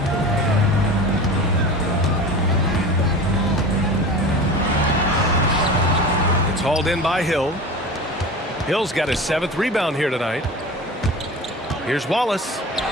It's hauled in by Hill. Hill's got his 7th rebound here tonight. Here's Wallace.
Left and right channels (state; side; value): normal; both; correlation 0.33